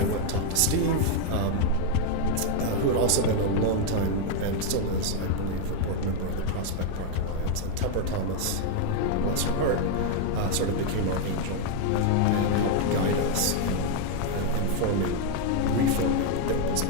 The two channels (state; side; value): different; both; correlation 0.00